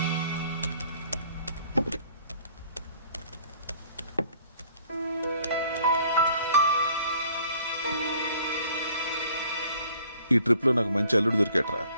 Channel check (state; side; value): inverted; both; correlation -0.58